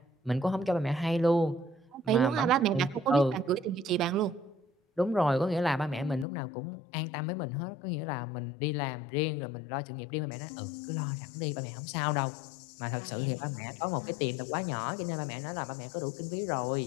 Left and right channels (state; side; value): drops out; right; at 6.2 s